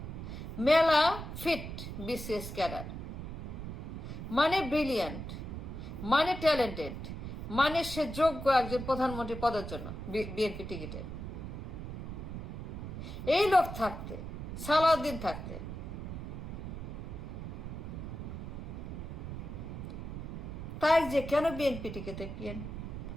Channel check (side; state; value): right; noise; rumble, 7 dB below the sound